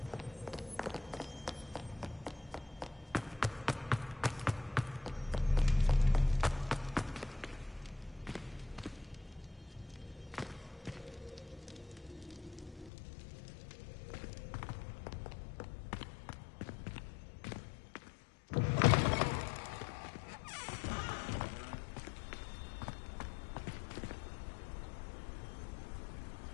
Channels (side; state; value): right; drops out; at 12.9 s